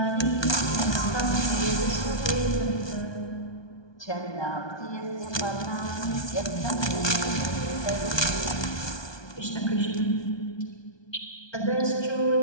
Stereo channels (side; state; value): right; late; 1.2 ms